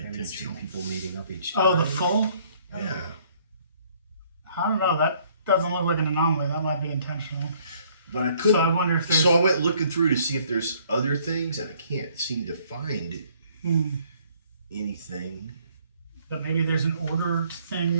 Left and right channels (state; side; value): inverted; both; correlation -0.62